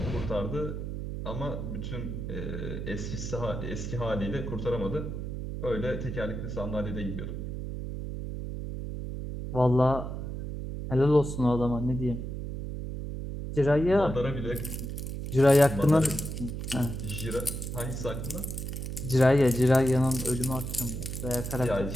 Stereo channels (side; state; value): right; noise; hum, 5 dB below the sound